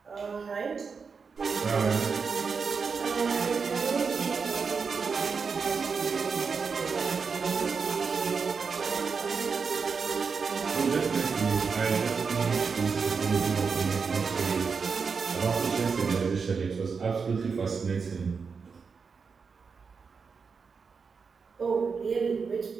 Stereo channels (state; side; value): quieter; left; 5.4 dB